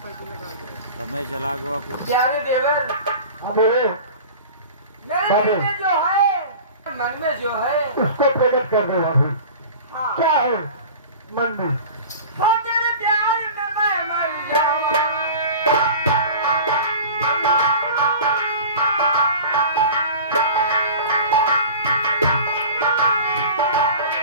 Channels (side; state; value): both; inverted; correlation -0.38